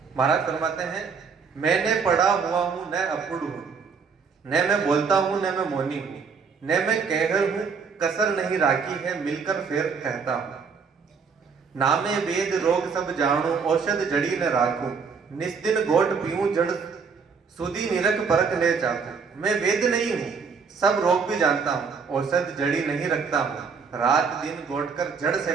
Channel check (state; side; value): quieter; left; 5.6 dB